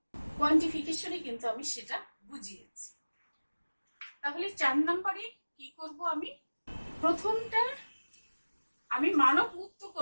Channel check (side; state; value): both; inverted; correlation -1.00